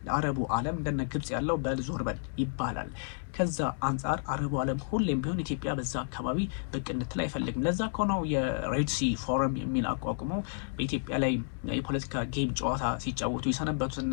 አረቡ ዓለም እንደነ ግብጽ ያለው በልዞር በል ይባላል። ከዛ አንጻር አረቡ ዓለም ሁሌም ቢሆን ኢትዮጵያ በዛ አካባቢ ብቅ እንድትል አይፈልግም። ለዛ ከሆነው የሬድ ሲ ፎረም የሚል አቋቁመው በኢትዮጵያ ላይ የፖለቲካ ጌም ጨዋታ ሲጫወቱ የሰነበቱት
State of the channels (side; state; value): right; silent; 57 dB below the other